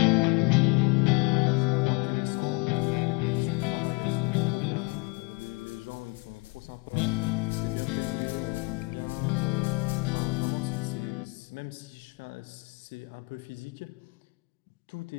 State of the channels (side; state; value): right; quieter; 28.2 dB